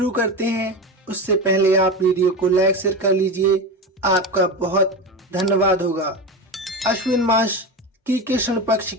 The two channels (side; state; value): both; normal; correlation 0.22